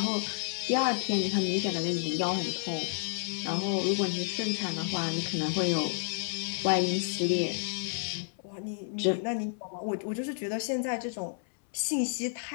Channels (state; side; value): silent; right; 57 dB below the other